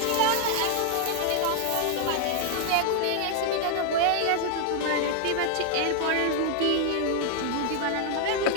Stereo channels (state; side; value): different; both; correlation 0.00